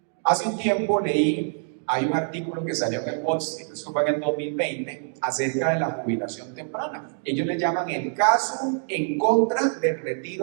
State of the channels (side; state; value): left; silent; digital silence